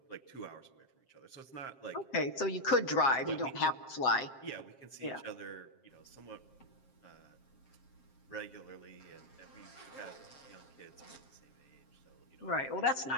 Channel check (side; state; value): right; late; 7.5 ms